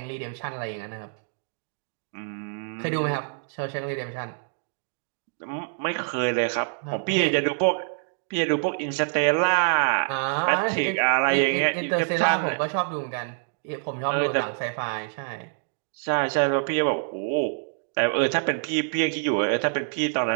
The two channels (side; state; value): left; silent; digital silence